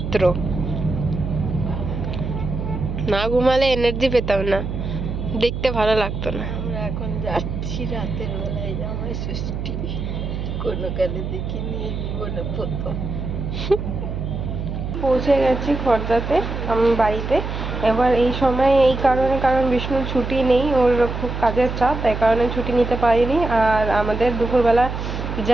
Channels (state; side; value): noise; right; hum, 5 dB below the sound